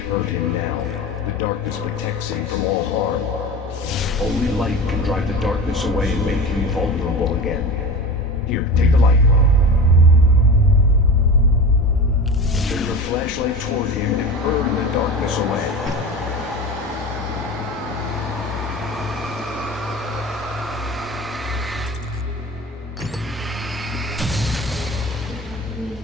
him now. The darkness protects him from all harm. Only light can drive the darkness away and make him vulnerable again. Here, take the light. Turn your flashlight toward him and burn the darkness away.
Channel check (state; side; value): normal; both; correlation 0.31